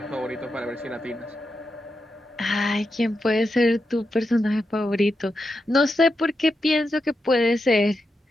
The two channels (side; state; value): both; normal; correlation 0.87